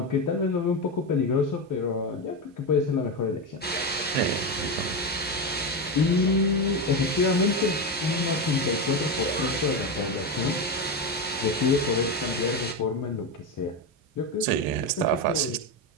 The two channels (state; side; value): normal; both; correlation 0.13